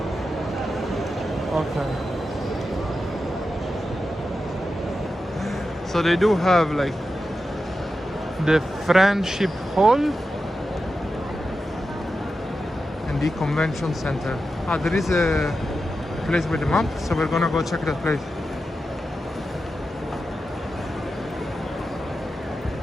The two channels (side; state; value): both; normal; correlation 0.90